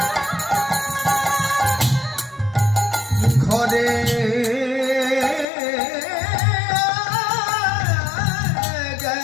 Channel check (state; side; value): drops out; right; at 5.5 s